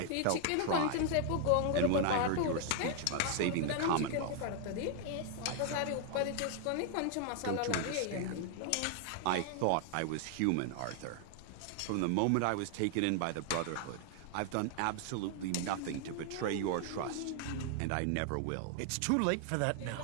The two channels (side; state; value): both; different; correlation 0.00